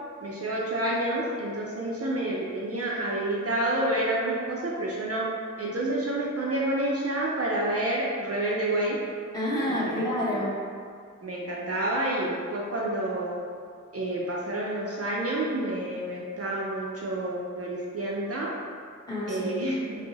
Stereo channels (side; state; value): both; normal; correlation 0.11